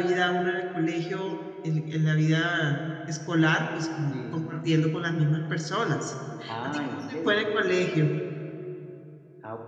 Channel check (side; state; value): both; identical; correlation 1.00